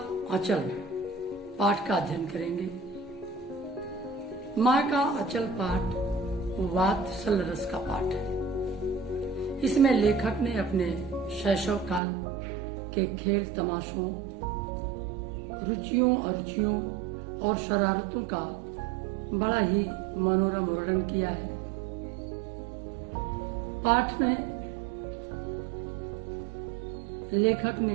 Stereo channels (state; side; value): drops out; left; at 12.0 s